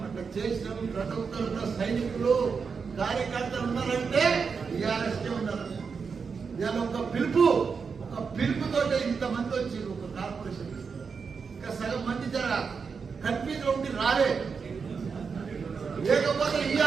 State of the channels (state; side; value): quieter; left; 5.5 dB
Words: అట్లా చేసినాం. ప్రతి ఒక్కరు సైనికులు కార్యకర్తలు ఉన్నారంటే టీఆర్ఎస్కే ఉన్నారు. ఇవాళ ఒక పిలుపుతో ఇంతమంది వచ్చారు ఒక కార్పొరేషన్. ఇంకా సగం మంది జర కన్ఫ్యూజ్ ఉండి రాలే, లేకపోతే